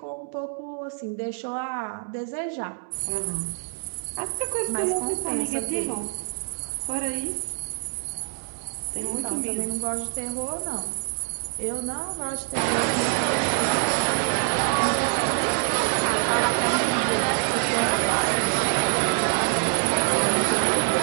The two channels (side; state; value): left; silent; 61 dB below the other